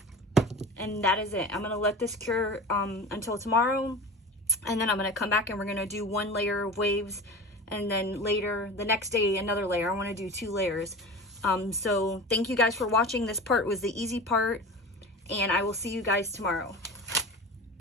And that is it. I'm gonna let this cure until tomorrow. And then I'm gonna come back and we're gonna do 1 layer of waves. And then later, the next day, another layer. I wanna do 2 layers. So thank you guys for watching. This part was the easy part. And I will see you guys tomorrow.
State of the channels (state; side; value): normal; both; correlation 0.33